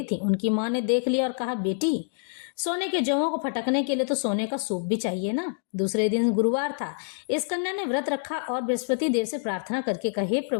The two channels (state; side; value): silent; right; digital silence